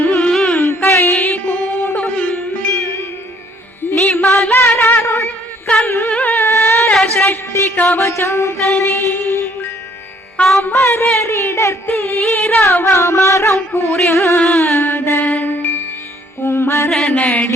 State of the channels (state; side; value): normal; both; correlation 0.62